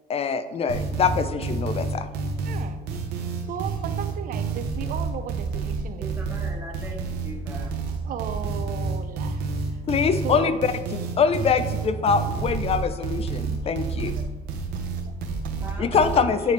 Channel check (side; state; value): both; normal; correlation 0.35